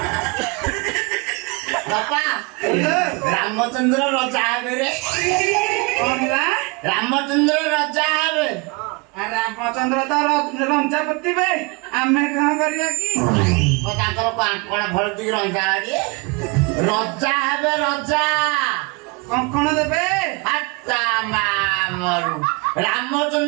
ବାପା ରାମଚନ୍ଦ୍ର ରଜା ହେବେ ରେ ରାମଚନ୍ଦ୍ର ରଜା ହେବେ ରାମଚନ୍ଦ୍ର ତ ରଞ୍ଜା ପୋତିବେ ଆମେ କଣ କରିବା କି ତାଙ୍କର କଣ ଭଲ ଟିକେ ରଞ୍ଜା ଗାଡି ରଜା ହେବେ ରଜା କଙ୍କଣ ଦେବେ ହାତା ମାମରୁ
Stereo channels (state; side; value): quieter; left; 28.5 dB